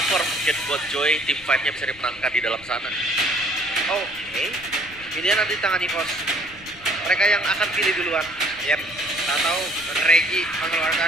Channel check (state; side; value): noise; left; rumble, 22 dB below the sound